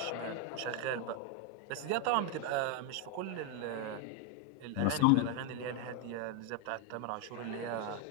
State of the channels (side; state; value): both; different; correlation 0.01